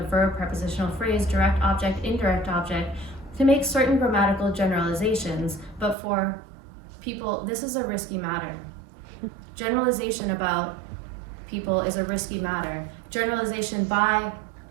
verb, prepositional phrase, direct object, indirect object to make certain grammatical generalizations, but for people, this is a risky matter. Generalization about people is a risky matter. Generalization by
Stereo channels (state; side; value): drops out; left; at 6.0 s